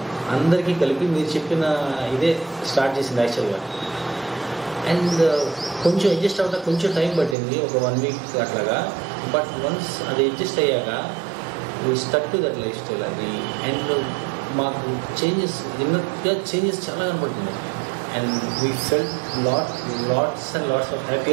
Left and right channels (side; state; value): left; drops out; at 7.4 s